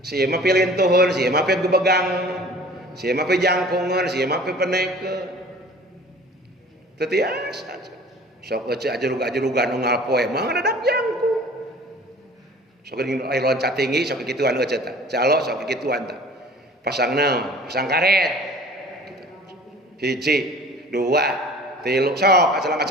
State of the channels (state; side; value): normal; both; correlation 0.46